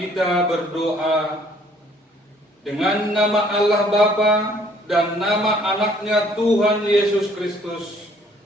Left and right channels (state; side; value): normal; both; correlation 0.60